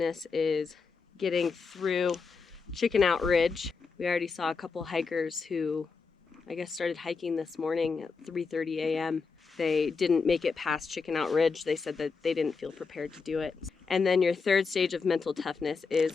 is getting through Chicken Out Ridge. We already saw a couple hikers who, I guess, started hiking this morning at 3:30 a.m. They didn't make it past Chicken Out Ridge. They said that they didn't feel prepared to do it. And then your third stage of mental toughness is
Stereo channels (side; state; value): right; quieter; 4.9 dB